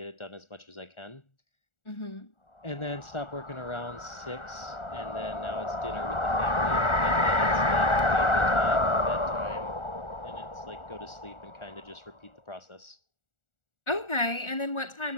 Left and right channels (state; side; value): late; right; 1.4 ms